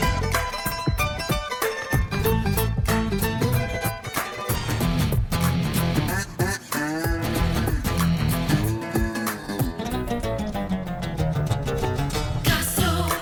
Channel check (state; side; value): identical; both; correlation 1.00